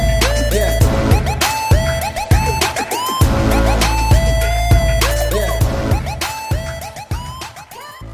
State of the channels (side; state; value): both; identical; correlation 1.00